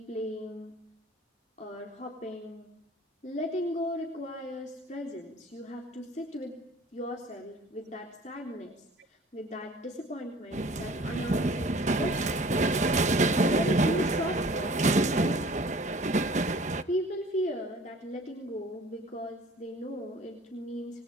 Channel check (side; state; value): both; normal; correlation 0.49